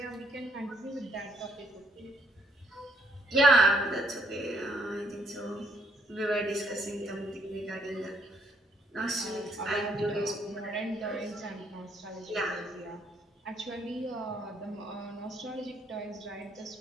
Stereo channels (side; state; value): both; normal; correlation 0.69